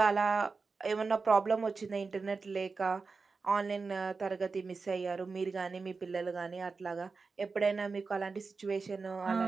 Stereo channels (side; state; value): left; quieter; 4.5 dB